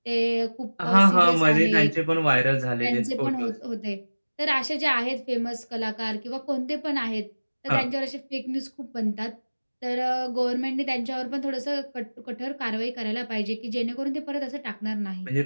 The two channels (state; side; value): inverted; both; correlation -1.00